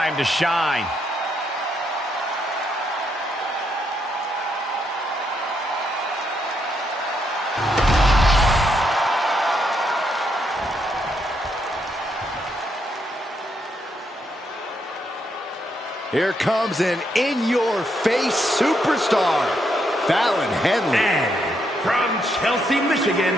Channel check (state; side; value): normal; both; correlation 0.77